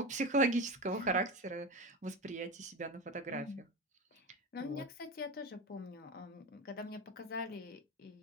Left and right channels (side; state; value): both; normal; correlation 0.24